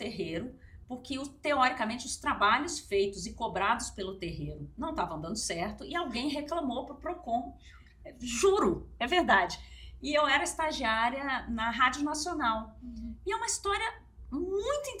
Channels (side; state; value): both; identical; correlation 1.00